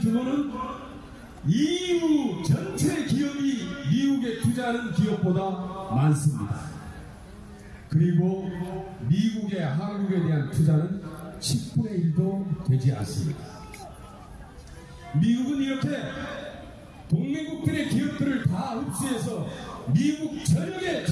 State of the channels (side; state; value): both; identical; correlation 1.00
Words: 규모는 EU 전체 기업이 미국에 투자하는 기업보다 많습니다. 그리고 미국의 한국에 대한 투자는 10분의 1도 되지 않습니다. 미국은 이렇게 동맹국들의 기업들을 다 흡수해서 미국 전역에